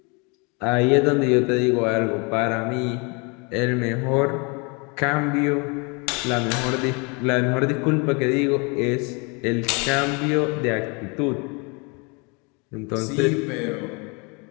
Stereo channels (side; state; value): right; quieter; 31.3 dB